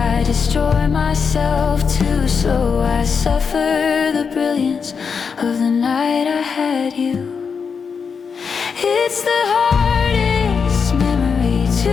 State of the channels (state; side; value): quieter; right; 5.9 dB